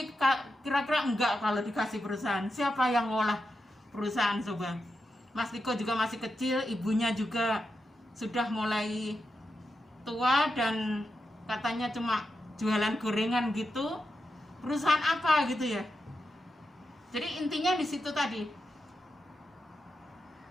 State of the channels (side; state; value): both; normal; correlation 0.88